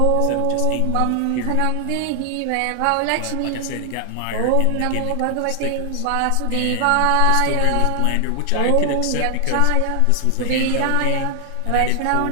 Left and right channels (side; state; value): both; different; correlation 0.00